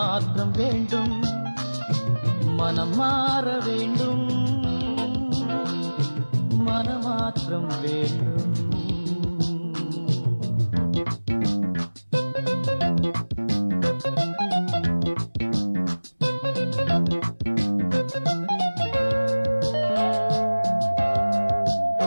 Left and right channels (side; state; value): both; inverted; correlation -1.00